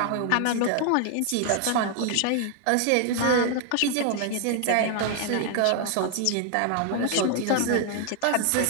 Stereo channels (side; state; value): both; different; correlation 0.00